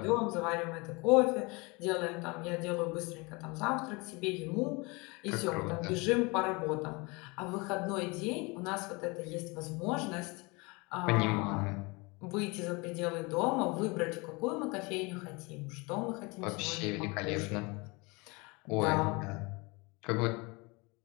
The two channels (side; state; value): right; quieter; 27.1 dB